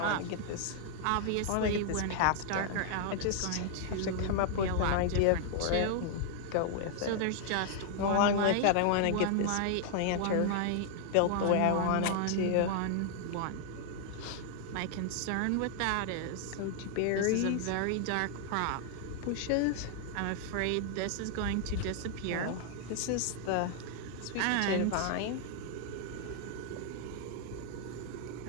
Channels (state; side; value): different; both; correlation 0.00